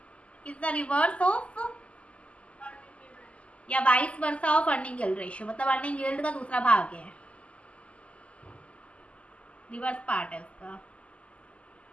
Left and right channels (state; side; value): late; right; 0.060 ms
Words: is the reverse of या vice versa of earning yield ratio, मतलब अर्निंग यील्ड का दूसरा भाग है, रिवर्स पार्ट है उसका।